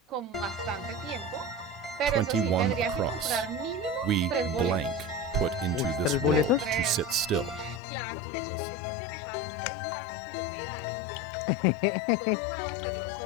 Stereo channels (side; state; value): right; drops out; at 7.8 s